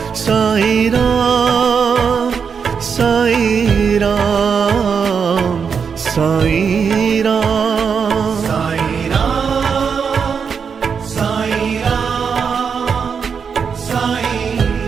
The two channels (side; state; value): left; quieter; 6.3 dB